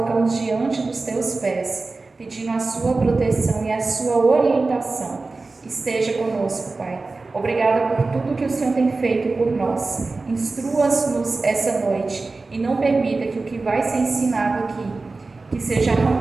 diante dos teus pés, pedindo a sua proteção e a sua orientação. Esteja conosco, Pai. Obrigada por tudo que o Senhor tem feito por nós. Instrua-nos essa noite e não permita que o que vai ser ensinado aqui, que seja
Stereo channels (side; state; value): left; quieter; 3.6 dB